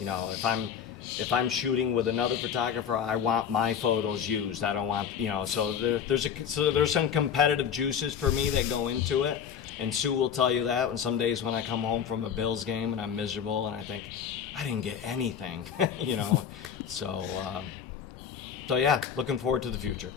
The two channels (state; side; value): quieter; right; 8.0 dB